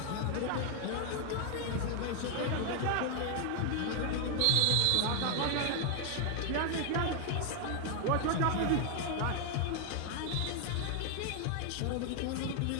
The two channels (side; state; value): both; different; correlation 0.00